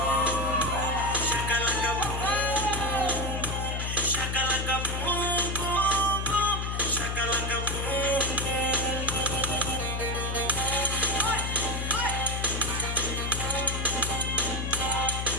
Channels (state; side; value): noise; left; hum, 2 dB below the sound